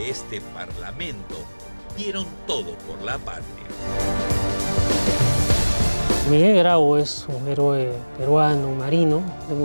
este Parlamento, dieron todo por la patria. Miguel Grau es un héroe peruano, un marino, de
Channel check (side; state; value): both; inverted; correlation -1.00